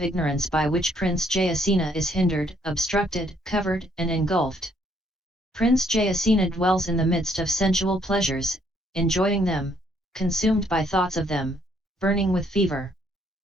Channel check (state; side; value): normal; both; correlation 0.68